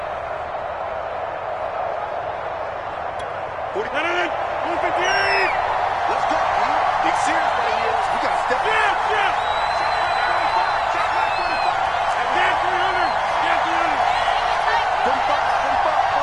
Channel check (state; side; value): identical; both; correlation 1.00